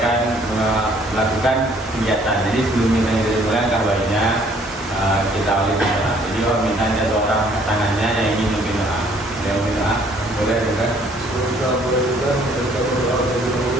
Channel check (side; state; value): both; normal; correlation 0.61